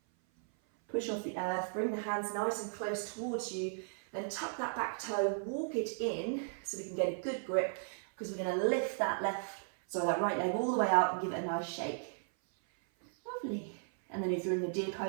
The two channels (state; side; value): silent; left; 54 dB below the other